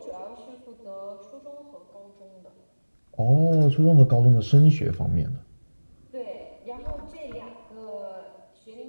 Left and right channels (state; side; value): inverted; both; correlation -1.00